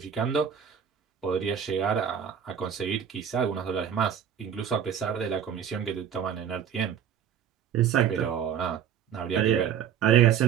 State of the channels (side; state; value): left; quieter; 8.6 dB